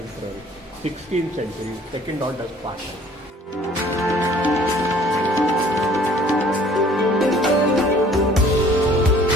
16th century, second order part है।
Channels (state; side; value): normal; both; correlation 0.54